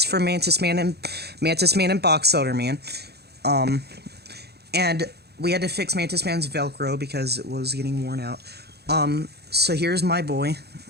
for Mantis Man and Boxelder Man. And we had to fix Mantis Man's Velcro because it was getting worn out. So here's my boy.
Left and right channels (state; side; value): late; left; 0.47 ms